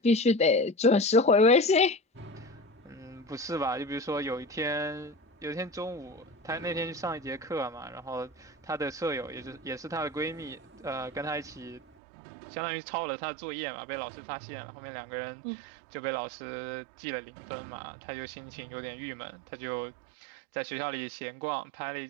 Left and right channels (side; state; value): left; drops out; at 11.8 s